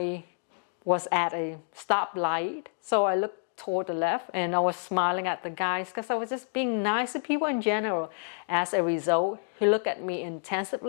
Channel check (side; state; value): right; silent; 59 dB below the other